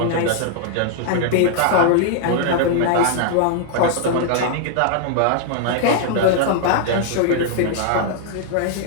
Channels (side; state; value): both; different; correlation -0.01